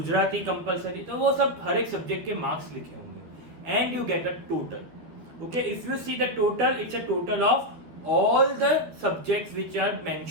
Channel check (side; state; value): left; late; 13 ms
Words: कंपलसरी, तो वो सब हर एक सब्जेक्ट के मार्क्स लिखे होंगे. And you get a total. Okay, if you see the total, it's a total of all the subjects which are